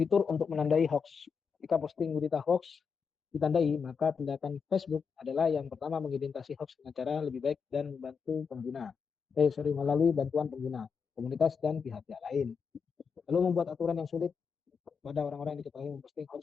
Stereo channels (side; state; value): right; quieter; 5.9 dB